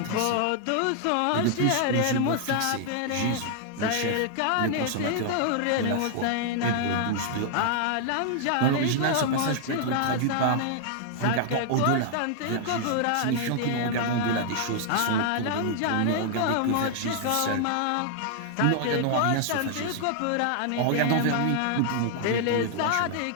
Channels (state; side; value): different; both; correlation 0.00